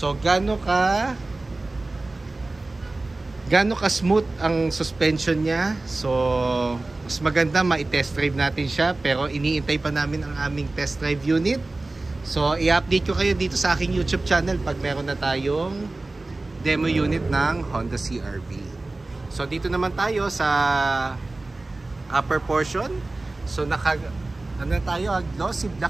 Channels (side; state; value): left; quieter; 3.1 dB